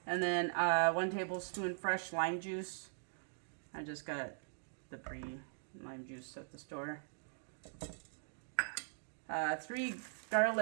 And then 1 tablespoon fresh lime juice. I just got the pre-lime juice at the store. 3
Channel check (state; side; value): silent; left; digital silence